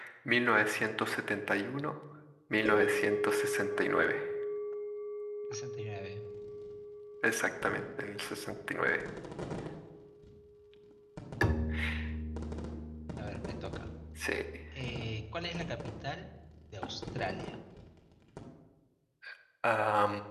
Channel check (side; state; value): both; identical; correlation 1.00